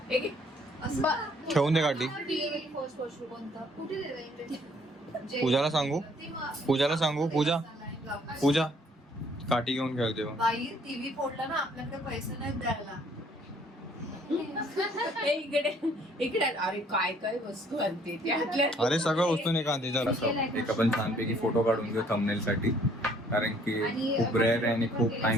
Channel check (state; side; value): normal; both; correlation 0.61